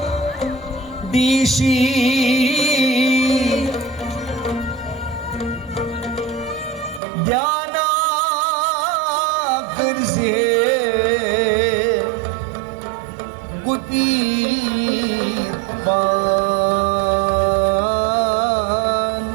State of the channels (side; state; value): left; drops out; at 7.0 s